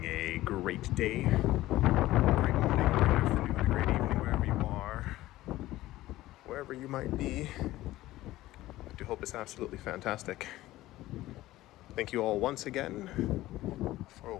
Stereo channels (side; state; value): right; quieter; 16.3 dB